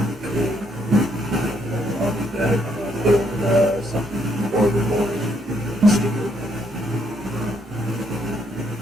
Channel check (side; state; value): both; normal; correlation 0.72